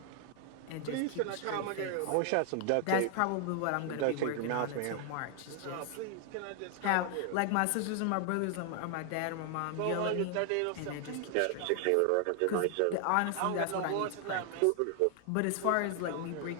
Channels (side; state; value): both; different; correlation 0.00